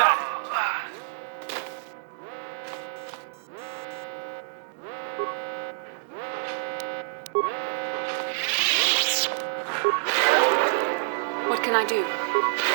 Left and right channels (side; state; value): left; silent; digital silence